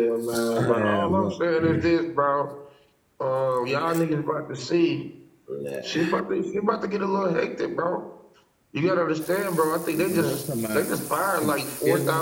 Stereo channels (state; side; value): identical; both; correlation 1.00